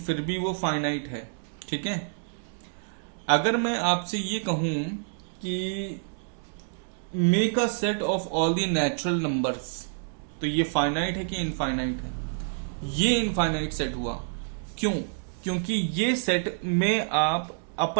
भी वो फाइनाइट है. ठीक है. अगर मैं आपसे ये कहूं कि make a set of all the natural numbers, तो ये फाइनाइट है कि इनफाइनाइट है, ये इनफाइनाइट सेट हुआ. क्यों? क्योंकि ये सेट में आप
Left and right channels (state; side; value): silent; left; digital silence